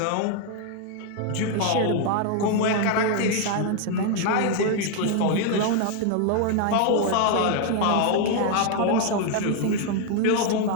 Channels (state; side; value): different; both; correlation 0.00